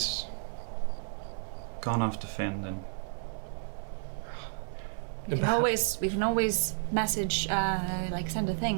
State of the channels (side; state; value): left; silent; 57 dB below the other